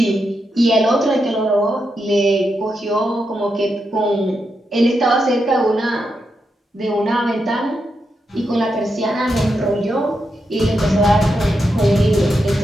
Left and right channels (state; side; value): normal; both; correlation 0.85